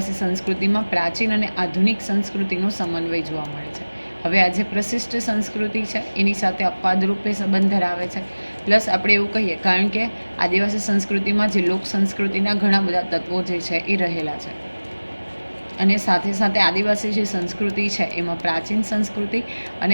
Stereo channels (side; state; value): both; inverted; correlation -1.00